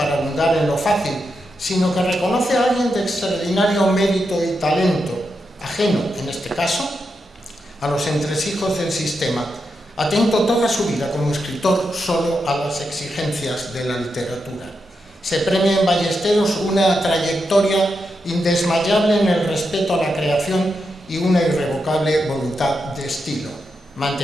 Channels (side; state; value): both; normal; correlation 0.85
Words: abundar en lo fácil, sino que reconoce a alguien de extraordinario mérito y talento, ajeno, en este caso, a los entresijos del sistema, atento toda su vida como escritor solo a las exigencias de la literatura. Se premia en Ballesteros una trayectoria indesmayable en el respeto a la creación y una irrevocable voluntad de estilo,